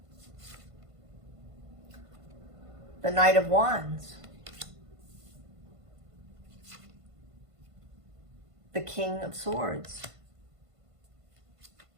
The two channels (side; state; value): left; late; 1.5 ms